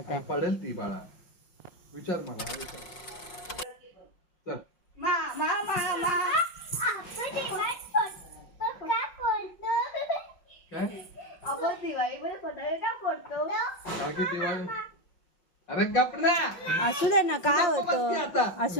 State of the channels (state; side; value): late; right; 5.5 ms